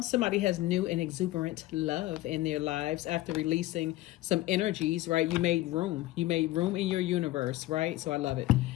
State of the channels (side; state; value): right; quieter; 17.1 dB